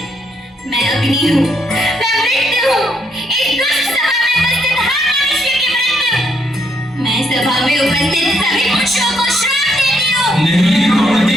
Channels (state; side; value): normal; both; correlation 0.74